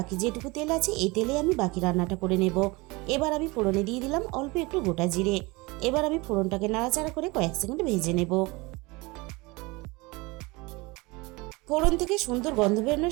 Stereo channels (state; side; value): quieter; left; 24.4 dB